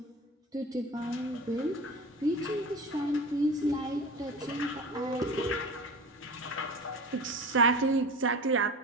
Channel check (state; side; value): normal; both; correlation 0.33